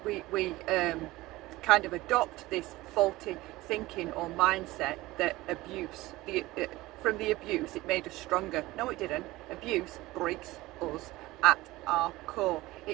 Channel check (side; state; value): left; quieter; 18.9 dB